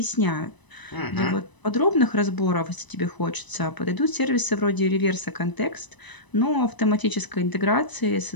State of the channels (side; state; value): right; late; 1.0 ms